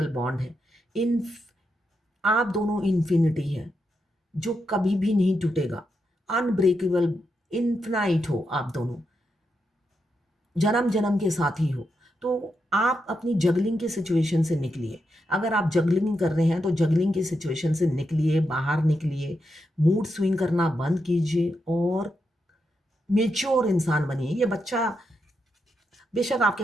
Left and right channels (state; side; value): normal; both; correlation 0.84